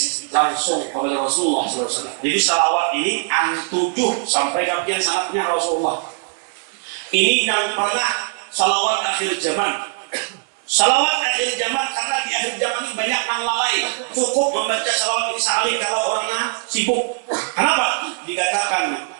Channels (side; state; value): left; silent; 57 dB below the other